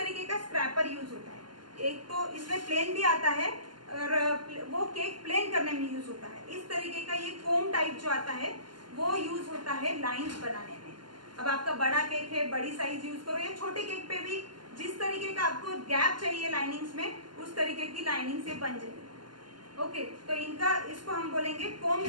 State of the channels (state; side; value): late; left; 0.71 ms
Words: का स्क्रैपर यूज होता है। एक तो इसमें प्लेन भी आता है और वो केक प्लेन करने में यूज होता है। इस तरीके का ये कोम टाइप जो आता है वो यूज होता है लाइंस बनाने में। अब आपका बड़ा केक है, बड़ी साइज यूज करो, या छोटे केक पे भी जिस तरीके का आपको गैप चाहिए लाइनिंग्स में, उस तरीके की लाइनिंग से बन जाएगी, ओके। तो इनका, इसको हम बोलेंगे कोम